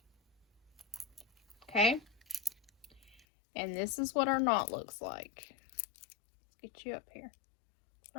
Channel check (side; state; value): right; drops out; at 3.2 s